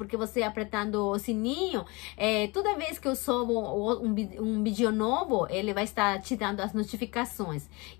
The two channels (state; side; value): quieter; right; 26.0 dB